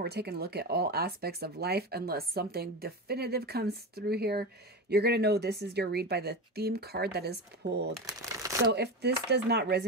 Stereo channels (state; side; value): normal; both; correlation 0.22